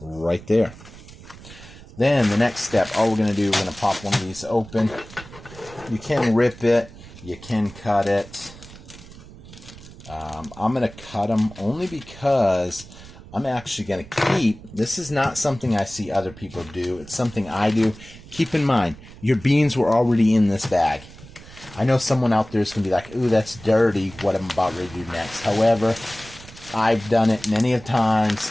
there. Then the next step, all we're going to do, we're going to pop one of these open. You can rip it. You can cut it. I'm going to cut them only because I'm actually going to keep. This is not something I see other people do. It's something I do. Keep in mind, your beans were already in this bag. I know someone out there is going to be like, ooh, that's dirty, what I'm about ready to do next. However, I've done it many of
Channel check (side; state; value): right; noise; rumble, 18 dB below the sound